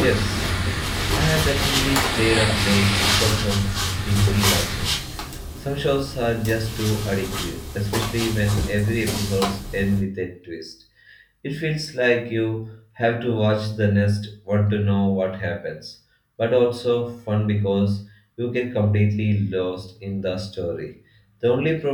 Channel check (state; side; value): identical; both; correlation 1.00